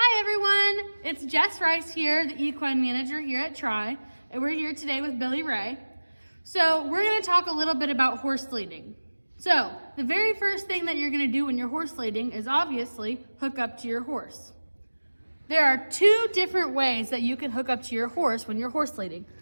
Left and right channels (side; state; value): both; inverted; correlation -1.00